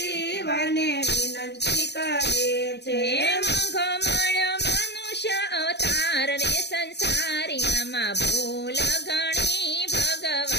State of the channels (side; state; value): right; late; 0.49 ms